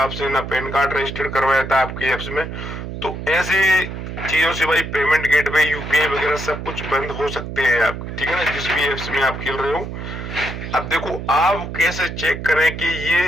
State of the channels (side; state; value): right; noise; hum, 7 dB below the sound